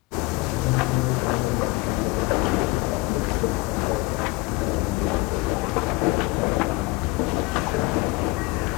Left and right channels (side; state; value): right; quieter; 23.3 dB